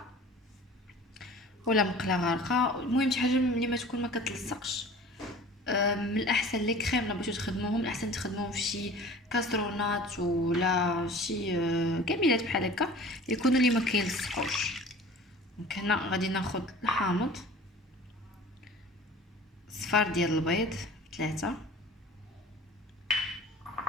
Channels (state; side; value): normal; both; correlation 0.43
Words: ولا مقله غارقه، المهم شي حاجه اللي ما تكون ما كتلصقش. من الاحسن لي كريم لا بغيتو تخدموهم، الاحسن تخدموهم في شي كاسرونات ولا شي كميلات بحال هكا يكونوا اللي ما كيلصقوش. دونك هنا غادي ناخذ الحامض، صفار ديال البيض 3،